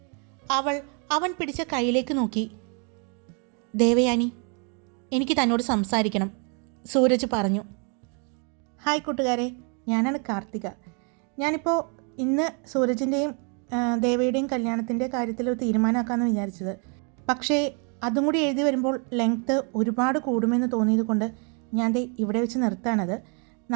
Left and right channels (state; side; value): quieter; left; 37.8 dB